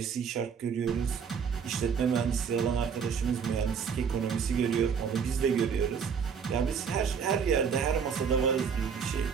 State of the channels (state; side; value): quieter; left; 6.7 dB